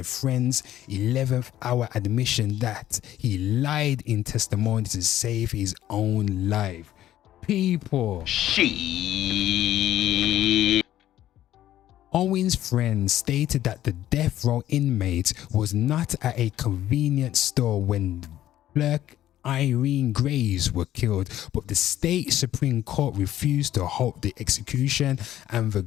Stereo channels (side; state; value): right; quieter; 12.9 dB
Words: friend's 11th hour admission that he lied in testimony to save his own life. People. Owen's friend stated that the death row inmate was not at a convenience store when clerk Irene Graves were killed, but the state Supreme Court refused to halt the execution and the